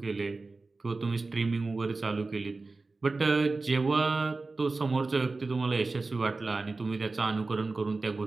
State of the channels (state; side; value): quieter; left; 3.6 dB